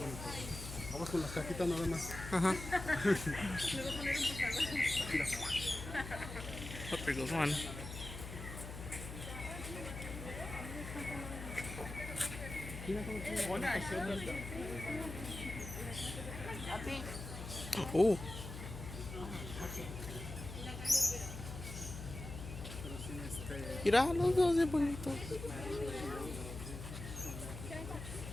Vamos con las cajitas nada más. Ajá. Mira. Oh, there goes one. Oh, Pero sí, mira los dos de bonitos.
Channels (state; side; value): noise; left; hum, 9 dB below the sound